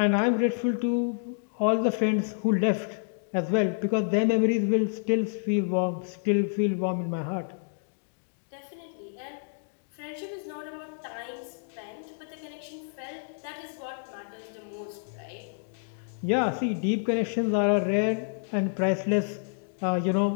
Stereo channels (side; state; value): right; silent; digital silence